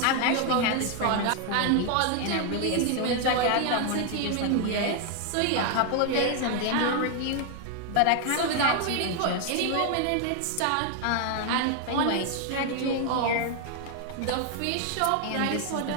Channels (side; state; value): both; different; correlation 0.00